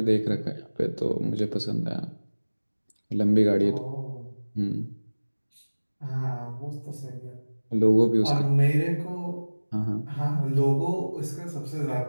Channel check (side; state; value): both; inverted; correlation -1.00